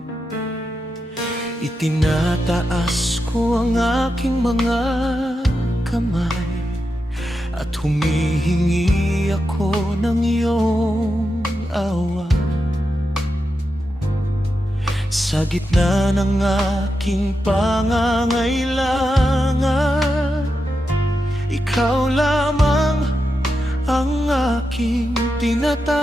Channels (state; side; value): normal; both; correlation 0.88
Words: Itinataas ko ang aking mga kamay at humihingi ako ng iyong awa. Sa gitna ng aking pangangailangan, ikaw lamang ang aking